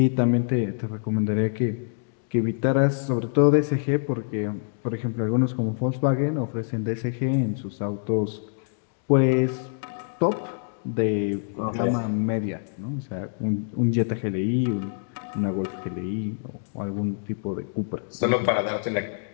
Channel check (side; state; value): right; silent; digital silence